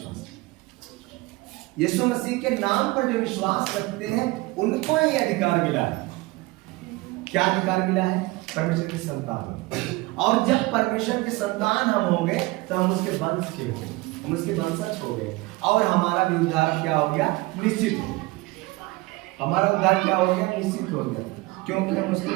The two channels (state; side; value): quieter; left; 21.8 dB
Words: यीशु मसीह के नाम पर जो विश्वास रखते हैं, उनको ये अधिकार मिला है। क्या अधिकार मिला है? परमेश्वर की संतान। और जब परमेश्वर की संतान हम हो गए, तो हम उसके वंश के हो गए, हम उसके वंशज हो गए, और हमारा भी उद्धार क्या हो गया? निश्चित हो गया। हमारा उद्धार क्या हो गया? निश्चित हो गया, क्योंकि हम उसके